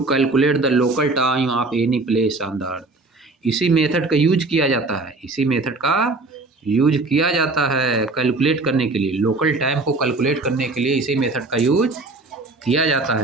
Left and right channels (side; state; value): left; quieter; 3.3 dB